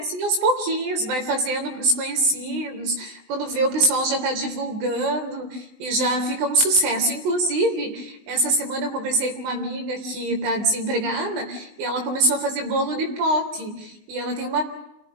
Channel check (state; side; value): late; left; 20 ms